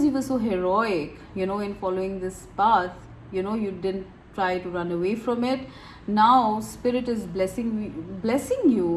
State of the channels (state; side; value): identical; both; correlation 1.00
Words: you were so heroic, in following this path, you didn't try to run away from it. Now Spirit is blessing